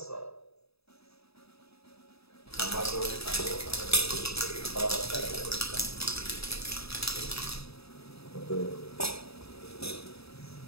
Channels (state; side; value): late; right; 0.78 ms